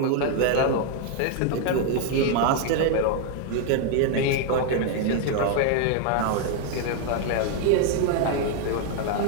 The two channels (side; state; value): both; different; correlation 0.00